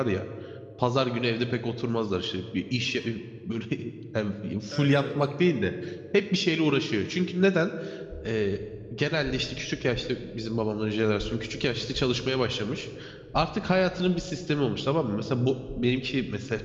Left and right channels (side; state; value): both; identical; correlation 1.00